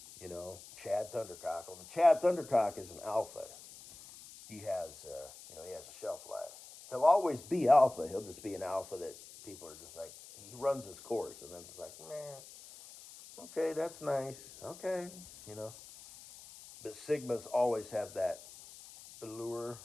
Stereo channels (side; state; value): left; noise; hiss, 17 dB below the sound